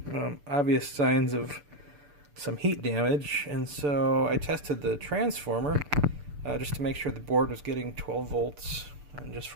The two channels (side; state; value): left; late; 6.8 ms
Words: Obvious signs of some heat damage, and so I tested the transformer just to make sure the board was getting 12 volts, and just